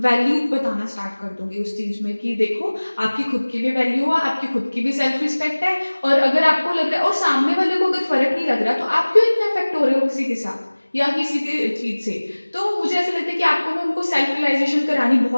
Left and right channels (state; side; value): inverted; both; correlation -1.00